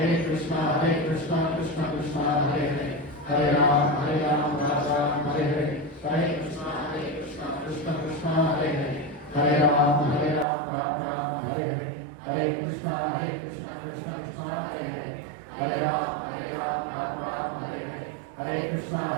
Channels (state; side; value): drops out; left; at 10.5 s